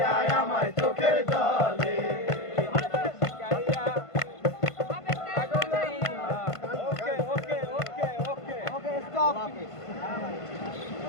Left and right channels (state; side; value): late; right; 1.5 ms